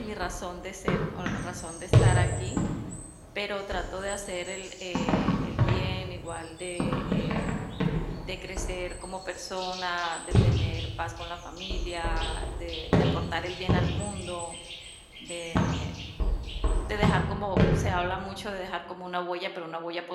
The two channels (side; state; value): both; identical; correlation 1.00